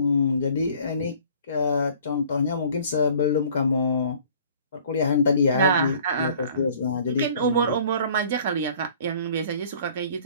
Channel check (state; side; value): inverted; both; correlation -0.53